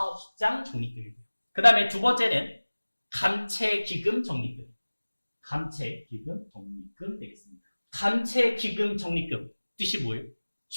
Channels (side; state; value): both; inverted; correlation -1.00